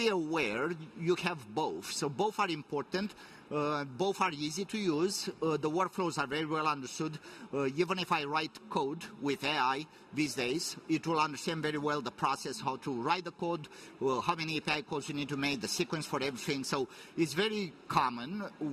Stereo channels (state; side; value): identical; both; correlation 1.00